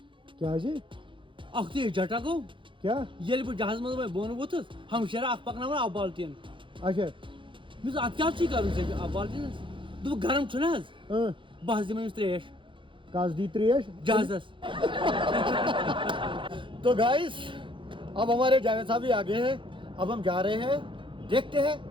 क्या अख ते जटा गो क्या ये जहाज मज बोन वोथस हम शरा अख पकनावन अब बाल्टीन अच्छा मिस अत क्या कर अब बाल्टीन दो गर्म छुना बस दिम त्रेश कस दी त्रेश जहाजस तो गाइस अब हमारे जावेद साहब भी आ गए हैं। अब हम जा रहे हैं, देखते हैं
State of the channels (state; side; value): late; left; 0.24 ms